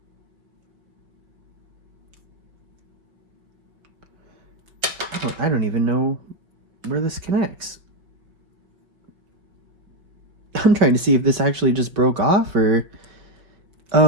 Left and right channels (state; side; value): late; left; 5.3 ms